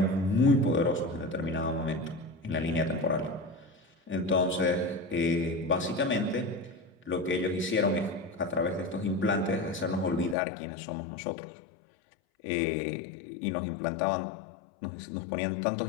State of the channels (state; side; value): drops out; right; at 10.4 s